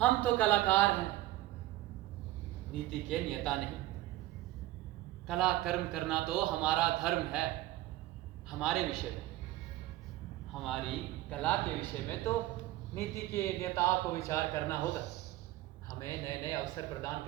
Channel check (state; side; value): quieter; left; 16.4 dB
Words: तो कलाकार हैं, नीति के नियता नहीं। कला कर्म करना तो हमारा धर्म है। हमारे विषय में, हमारी कला के विषय में तो नीति के नेताओं को विचार करना होगा। हमें नए नए अवसर प्रदान